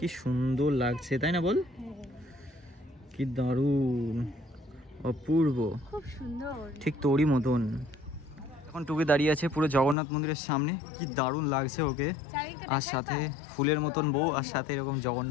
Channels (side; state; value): right; drops out; at 10.0 s